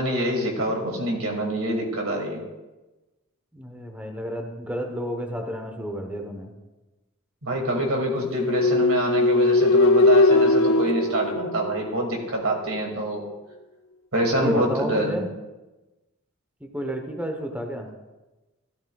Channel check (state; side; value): normal; both; correlation -0.01